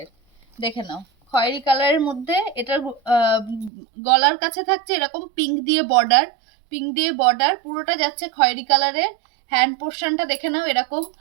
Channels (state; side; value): drops out; left; at 3.7 s